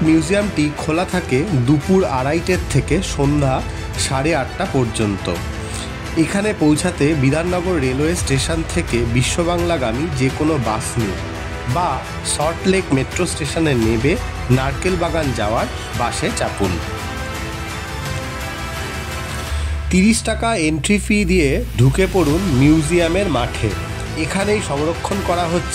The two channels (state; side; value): identical; both; correlation 1.00